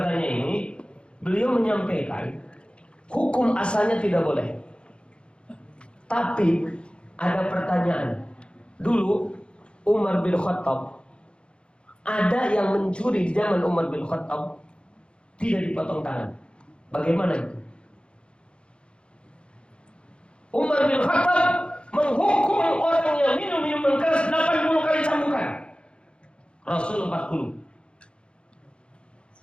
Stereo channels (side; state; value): right; late; 0.056 ms